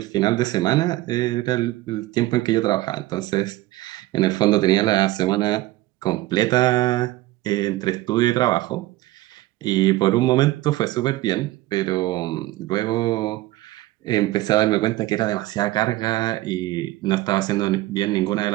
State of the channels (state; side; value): quieter; left; 17.3 dB